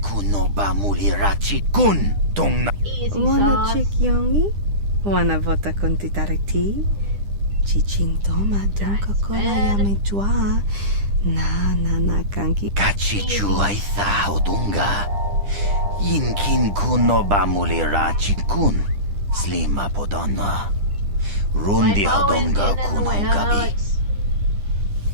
kuno ba mulirachi kun. Tong na. Easy Wanna sauce. chick yongi? Wanna vota con titariti? Chichintoma don Coca-Cola yamejua. Na kanki. Kachichu aitha odunga. Yinkin kuno ba mulirachi kun. Slima podonna. Rundi hodonga kuno gabi.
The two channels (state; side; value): late; left; 10 ms